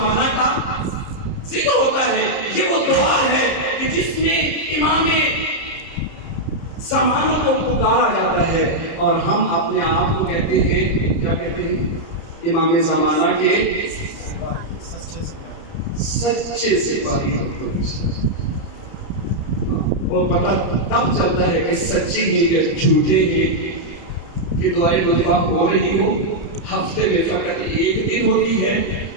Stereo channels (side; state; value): right; late; 30 ms